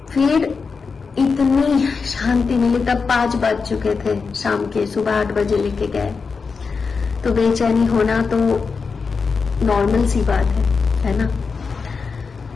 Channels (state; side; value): quieter; right; 5.0 dB